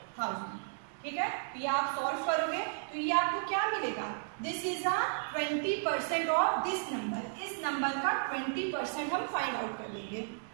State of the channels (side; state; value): left; silent; 55 dB below the other